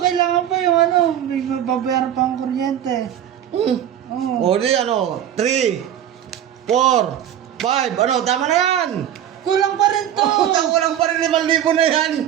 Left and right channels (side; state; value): left; quieter; 10.5 dB